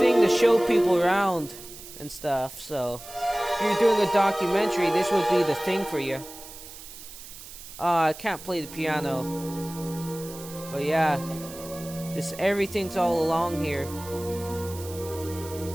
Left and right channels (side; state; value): right; noise; hiss, 15 dB below the sound